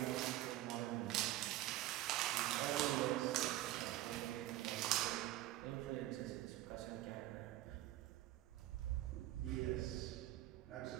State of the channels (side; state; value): left; quieter; 15.3 dB